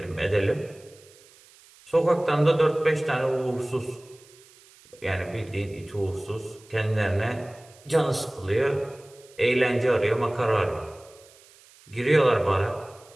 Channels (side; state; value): right; noise; hiss, 26 dB below the sound